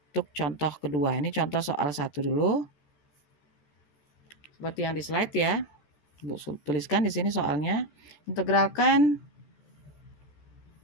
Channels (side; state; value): right; late; 14 ms